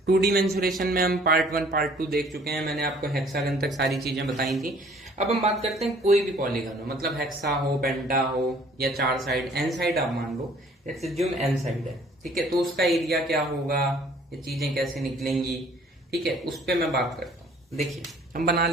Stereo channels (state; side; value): normal; both; correlation 0.56